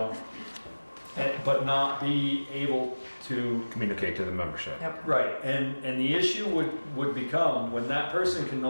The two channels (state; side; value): inverted; both; correlation -1.00